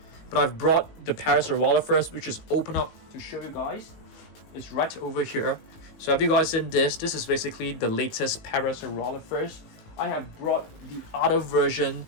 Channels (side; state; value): right; late; 19 ms